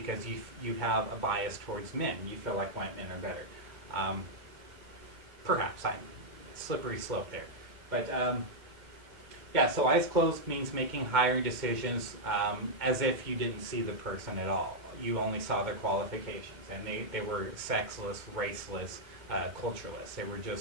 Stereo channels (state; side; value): late; left; 2.1 ms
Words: you have a bias towards men. You feel like white men are better. Perhaps I'm slippery slope there, but yeah. So eyes closed means making hiring decisions as if you didn't see the person at all. You only saw their qualifications, and they were sexless, raceless, cultureless. They were